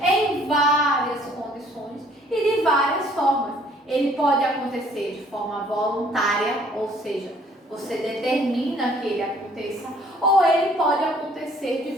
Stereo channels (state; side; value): normal; both; correlation 0.59